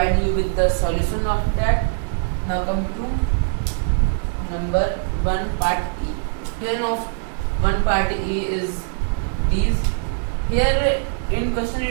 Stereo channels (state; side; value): silent; left; digital silence